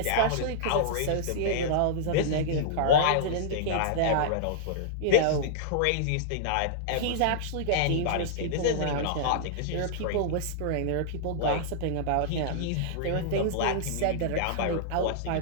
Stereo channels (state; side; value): different; both; correlation -0.02